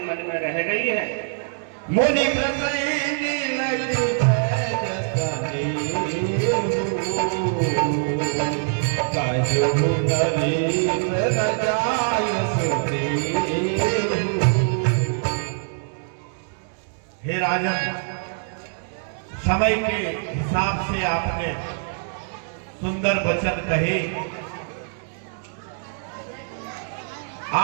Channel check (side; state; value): left; silent; digital silence